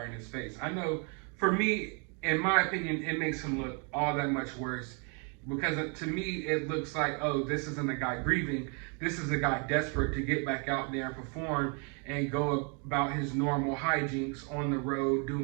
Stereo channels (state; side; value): quieter; left; 36.6 dB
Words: in his face. I know, for me, in my opinion, it makes him look all that much worse, because to me, it looks like, oh, this isn't a guy grieving. This is a guy desperate to get back out there and perform and go about his normal hijinks on the road,